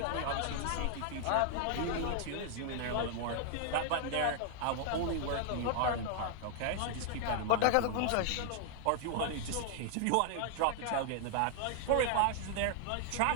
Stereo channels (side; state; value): both; different; correlation 0.00